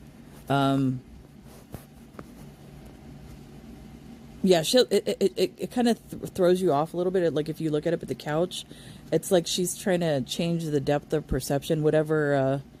Yeah, it kind of throws you off a little bit. Like if you look at it at the couch, it's like she's trying to change the depth of perception, whatever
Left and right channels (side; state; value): both; identical; correlation 1.00